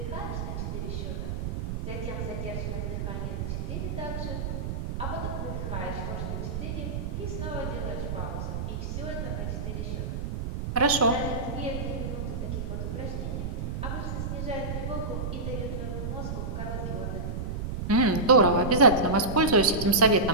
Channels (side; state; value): right; noise; rumble, 3 dB below the sound